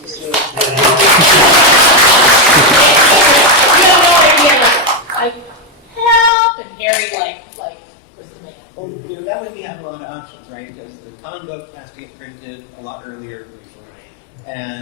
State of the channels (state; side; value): drops out; right; at 6.3 s